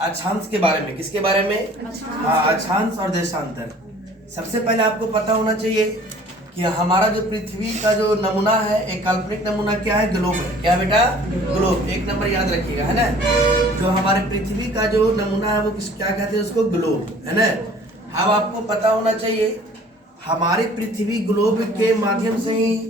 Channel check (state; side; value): normal; both; correlation 0.51